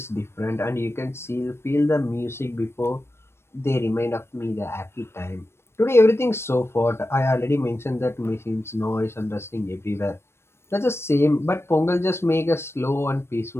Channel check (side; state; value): right; late; 0.12 ms